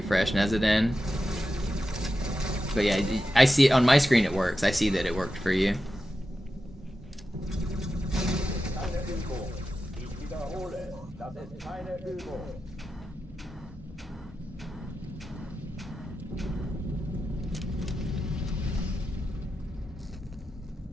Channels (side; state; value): both; normal; correlation 0.91